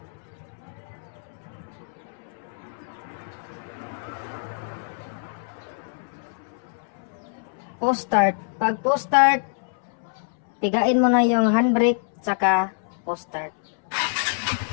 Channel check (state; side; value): silent; right; 61 dB below the other